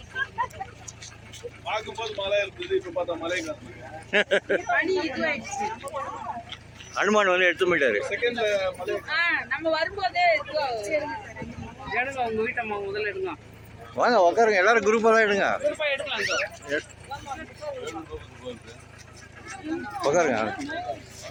பார்க்கும்போது மழை இருந்தது, இப்ப பார்த்தா மழை அனுமான் வந்து எடுத்து போயிட்டாரு. செகண்ட்ல மழை. நம்ம வரும்போதே எடுங்க, உங்க வீட்டம்மா முதல்ல எடுங்க. வாங்க உட்காருங்க, எல்லாரும் குரூப்பாக தான் எடுங்க. உட்காருங்க.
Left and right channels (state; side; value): identical; both; correlation 1.00